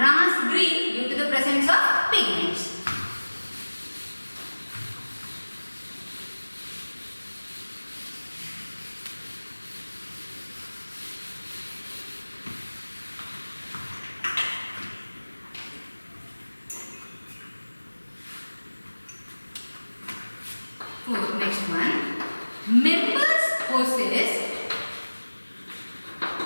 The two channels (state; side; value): inverted; both; correlation -1.00